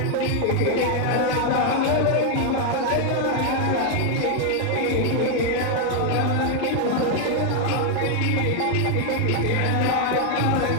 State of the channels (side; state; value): both; different; correlation 0.00